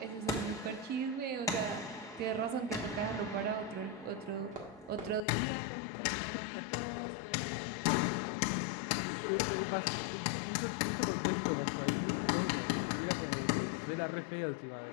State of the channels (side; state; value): right; drops out; at 5.2 s